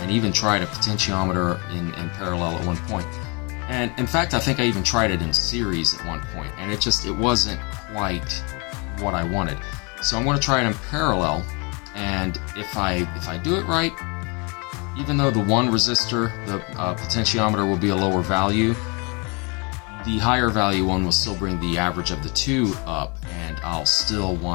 even tried a potentiometer in parallel at one point. And in fact, I think I even tried it in series at one point, and it wasn't quite what I wanted. So I'm going to try it in parallel, and if I do it right, even though the one resistor, the potentiometer, will be a lower value, the higher value one will still bring the average of the two up, and I'll still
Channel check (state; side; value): quieter; right; 31.1 dB